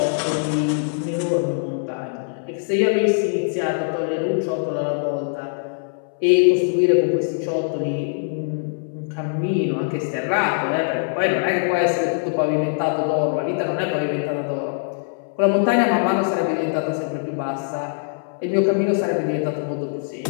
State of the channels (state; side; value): silent; right; 64 dB below the other